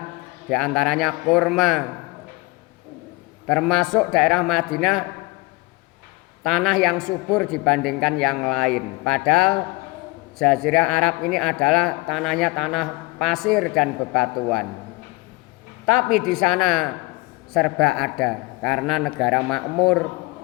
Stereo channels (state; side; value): quieter; right; 22.5 dB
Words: diantaranya kurma. Termasuk daerah Madinah tanah yang subur dibandingkan yang lain. Padahal Jazirah Arab ini adalah tanahnya tanah pasir dan bebatuan. Tapi di sana serba ada karena negara makmur,